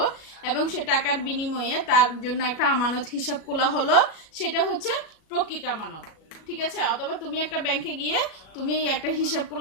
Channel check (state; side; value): late; right; 37 ms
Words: এবং সে টাকার বিনিময়ে তার জন্য একটা আমানত হিসাব খোলা হলো, সেটা হচ্ছে প্রকৃত আমানত। ঠিক আছে, অথবা তুমি একটা ব্যাংকে গিয়ে তুমি একটা হিসাব